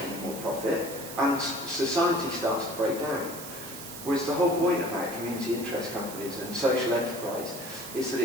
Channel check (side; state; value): right; noise; hiss, 11 dB below the sound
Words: any more profit, and society starts to break down. Whereas the whole point about community interest companies and social enterprise is that